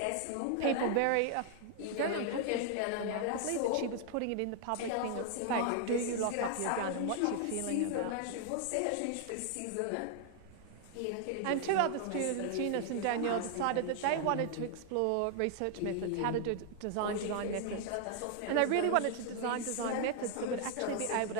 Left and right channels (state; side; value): different; both; correlation 0.00